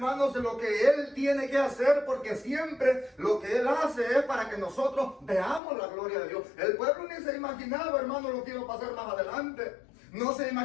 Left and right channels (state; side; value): drops out; right; at 5.6 s